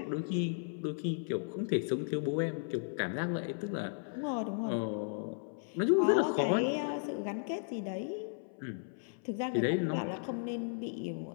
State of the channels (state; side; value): silent; right; 54 dB below the other